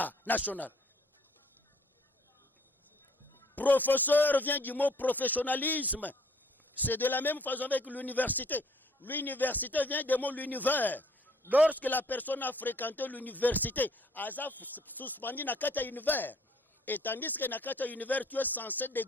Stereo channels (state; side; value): normal; both; correlation 0.60